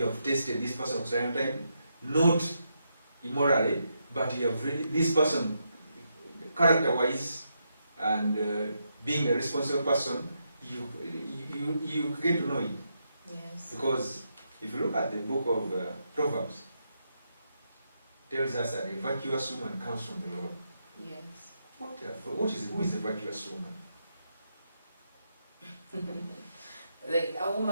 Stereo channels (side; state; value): both; inverted; correlation -0.81